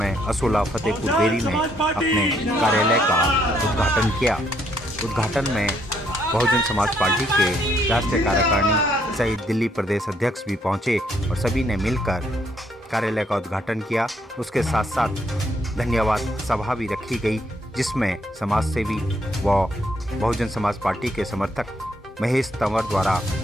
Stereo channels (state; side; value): normal; both; correlation 0.71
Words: असोला फतेहपुर बेरी में अपने कार्यालय का उद्घाटन किया। उद्घाटन में बहुजन समाज पार्टी के राष्ट्रीय कार्यकारिणी सहित दिल्ली प्रदेश अध्यक्ष भी पहुंचे और सभी ने मिलकर कार्यालय का उद्घाटन किया। उसके साथ साथ धन्यवाद सभा भी रखी गई, जिसमें समाज सेवी व बहुजन समाज पार्टी के समर्थक महेश तंवर द्वारा